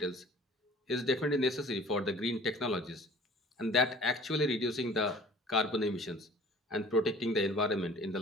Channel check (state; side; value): normal; both; correlation 0.48